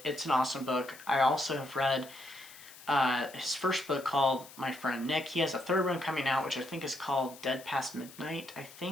It's an awesome book. I also have read his first book called My Friend Nick. He has a third one coming out, which I think is called Dead Past Midnight, I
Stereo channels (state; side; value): noise; left; hiss, 19 dB below the sound